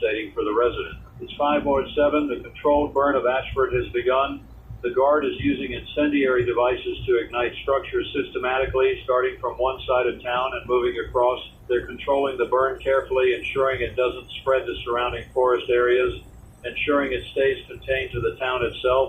for the resident. It's 5:07. The controlled burn of Ashford has begun. The Guard is using incendiary devices to ignite structures systematically, starting from one side of town and moving across. They're controlling the burn carefully, ensuring it doesn't spread to surrounding forest areas, ensuring it stays contained to the town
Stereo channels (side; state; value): both; identical; correlation 1.00